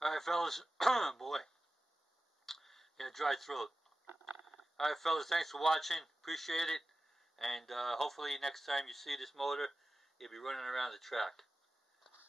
Alright fellas, boy, got a dry throat. Alright fellas, thanks for watching, appreciate it, and hopefully next time you see this motor, you'll be running around the track.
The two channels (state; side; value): normal; both; correlation 0.95